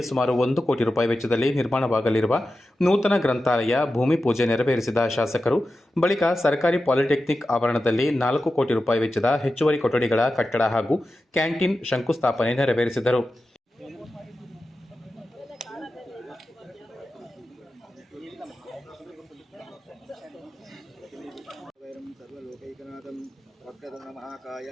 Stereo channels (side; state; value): both; normal; correlation 0.92